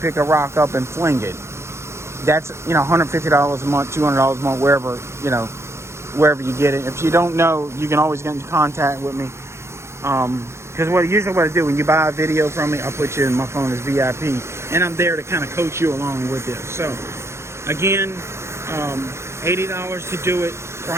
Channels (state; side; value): late; left; 0.13 ms